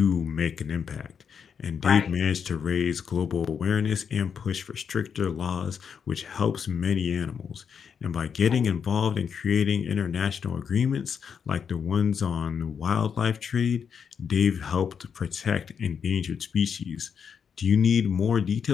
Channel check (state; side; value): quieter; right; 7.0 dB